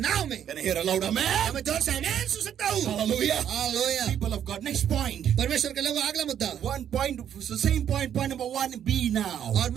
नाव में। Can I hear a loud amen? मैं जोर से आमीन सुन सकता हूँ। Hallelujah. Hallelujah. People of God. Next point. परमेश्वर के लोगों, अगला मुद्दा। One point, the same point number 1B now. और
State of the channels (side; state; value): left; quieter; 9.5 dB